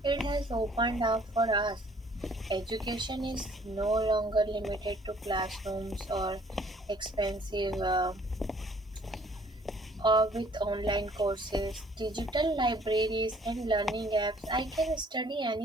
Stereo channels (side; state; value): both; normal; correlation 0.58